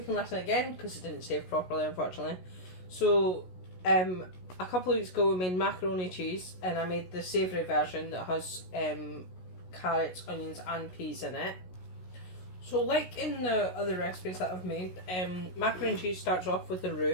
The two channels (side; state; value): right; late; 16 ms